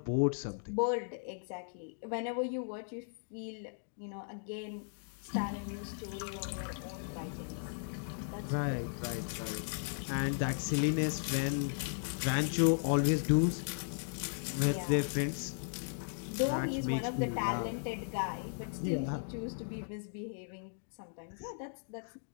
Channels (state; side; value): silent; right; digital silence